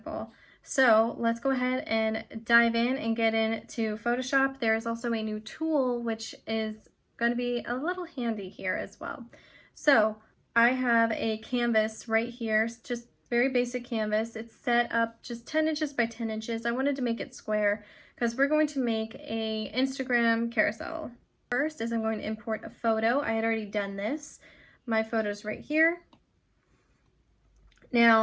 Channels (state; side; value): identical; both; correlation 1.00